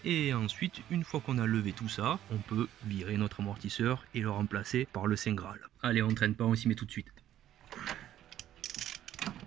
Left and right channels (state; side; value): quieter; left; 12.1 dB